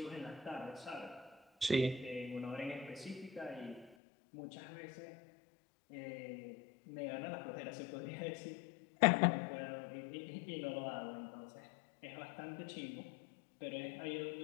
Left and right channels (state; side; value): drops out; right; at 4.0 s